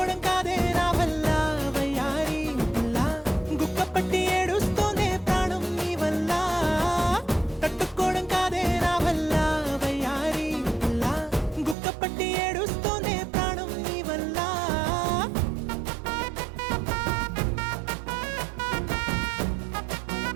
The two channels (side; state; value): left; drops out; at 11.8 s